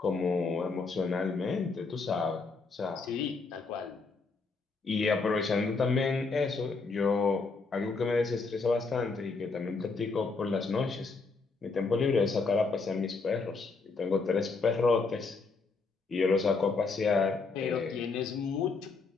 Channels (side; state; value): right; quieter; 4.3 dB